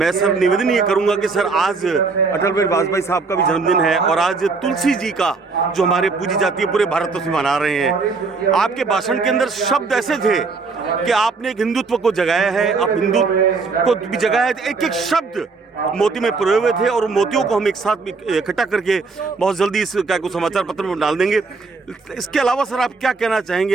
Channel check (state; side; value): quieter; left; 4.3 dB